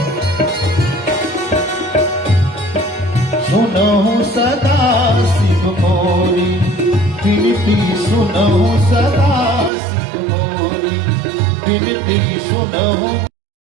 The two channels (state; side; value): drops out; left; at 9.7 s